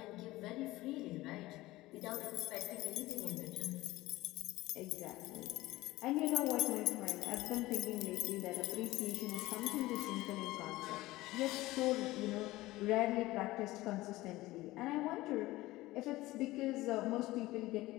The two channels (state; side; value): quieter; right; 18.3 dB